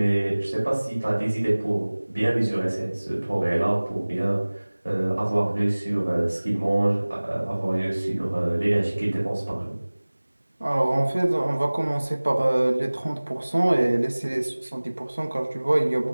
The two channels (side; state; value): both; inverted; correlation -1.00